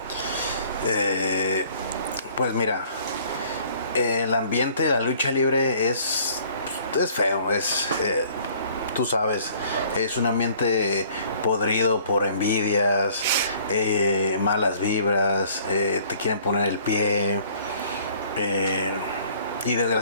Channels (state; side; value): inverted; both; correlation -0.56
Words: Pues mira, el ambiente de la lucha libre es feo, tú sabes, es un ambiente podrido por envidias, malas vibras, te quieren poner el pie, y